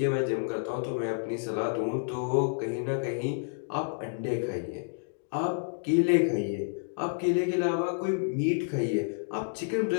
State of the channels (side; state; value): right; silent; digital silence